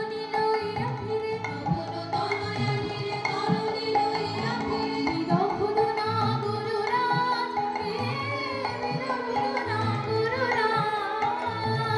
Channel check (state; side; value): identical; both; correlation 1.00